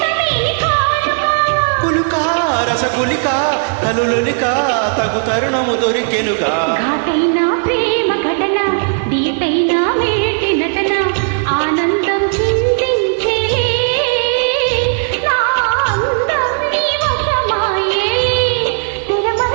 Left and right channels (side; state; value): left; silent; digital silence